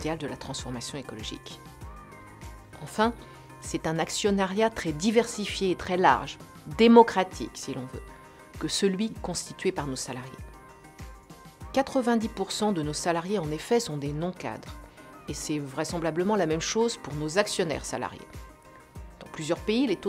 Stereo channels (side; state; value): both; identical; correlation 1.00